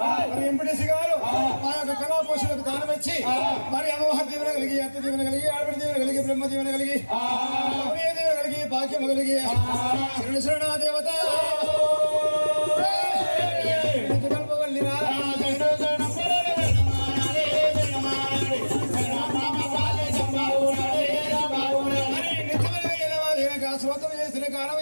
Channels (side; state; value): both; inverted; correlation -1.00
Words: మరి ఎంపీటీసీ గారు మా యొక్క కళా పోషణకు దానం ఇచ్చి మరి అమ్మవారి దీవెన కలిగి అత్త దీవెన కలిగి ఆడపడి దీవెన కలిగి బ్రహ్మ దీవెన కలిగి అమ్మయ్య దీవెన కలిగి భాగ్యం కలిగి శరణ శరణ దేవత కల్పవల్లిరా స్వతం చేసిన కాలం